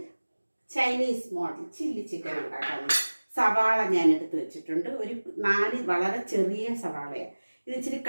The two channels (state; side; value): inverted; both; correlation -1.00